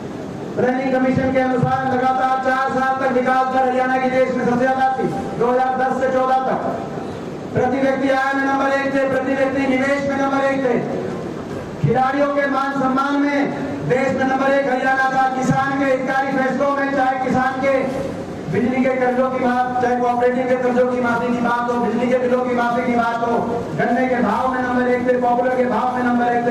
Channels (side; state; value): both; identical; correlation 1.00